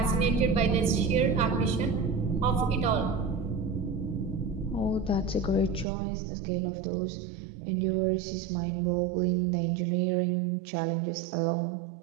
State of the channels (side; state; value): left; drops out; at 5.9 s